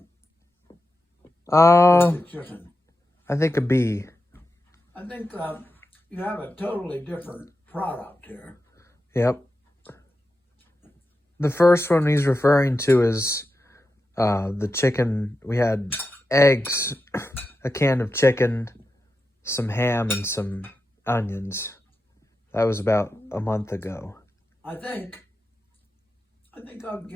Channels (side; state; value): both; normal; correlation 0.90